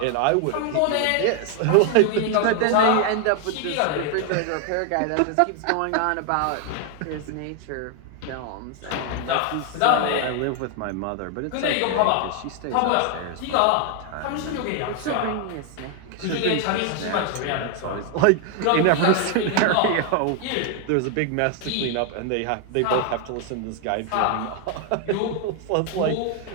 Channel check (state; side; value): different; both; correlation 0.01